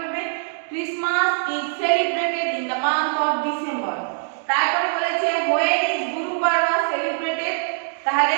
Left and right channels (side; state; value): left; silent; digital silence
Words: Christmas is celebrated in the month of December. তারপরে বলেছে when is গুরু পর্ব সেলিব্রেটেড, তাহলে